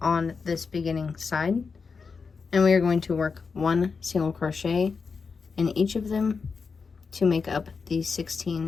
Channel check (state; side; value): quieter; right; 5.1 dB